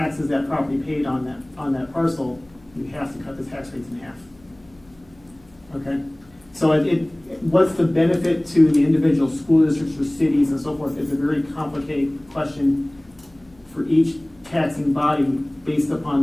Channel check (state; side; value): noise; left; hum, 29 dB below the sound